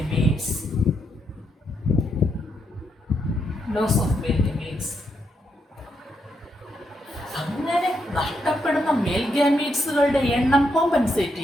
Loss of male gametes. അങ്ങനെ നഷ്ടപ്പെടുന്ന മെയിൽ ഗാമീറ്റ്സുകളുടെ എണ്ണം കോമ്പൻസേറ്റ്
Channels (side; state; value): both; normal; correlation 0.79